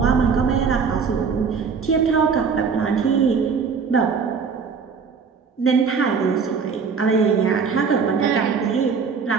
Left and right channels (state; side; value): quieter; left; 5.7 dB